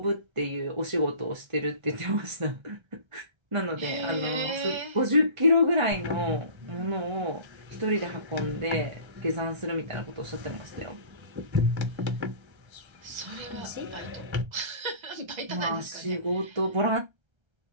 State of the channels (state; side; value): late; left; 1.3 ms